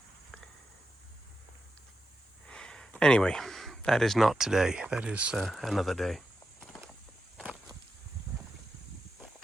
Anyway, that is not today. That is another day.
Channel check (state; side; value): normal; both; correlation 0.88